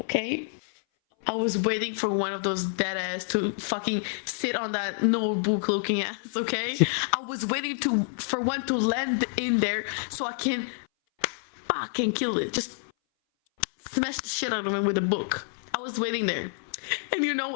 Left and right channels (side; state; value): right; silent; 58 dB below the other